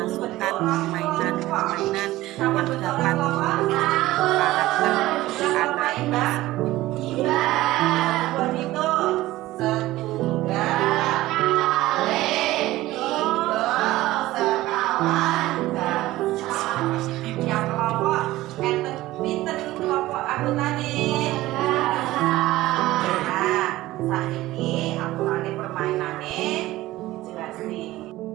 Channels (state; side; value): quieter; left; 17.0 dB